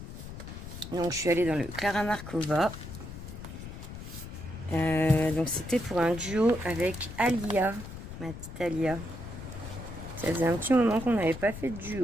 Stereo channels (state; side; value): noise; left; rumble, 11 dB below the sound